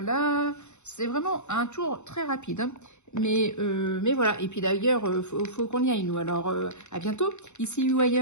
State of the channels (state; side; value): late; right; 0.83 ms